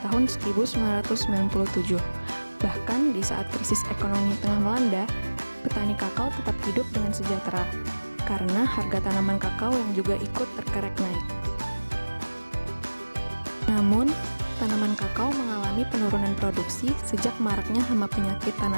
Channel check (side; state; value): both; inverted; correlation -1.00